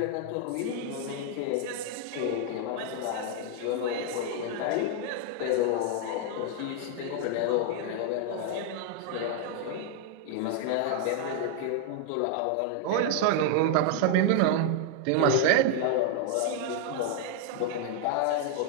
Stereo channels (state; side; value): different; both; correlation 0.00